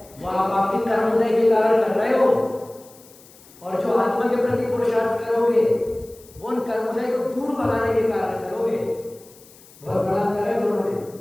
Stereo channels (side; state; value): left; noise; hiss, 24 dB below the sound